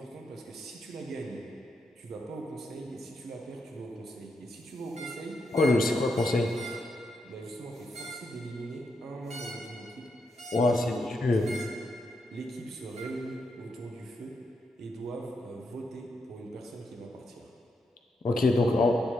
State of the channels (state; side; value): normal; both; correlation 0.81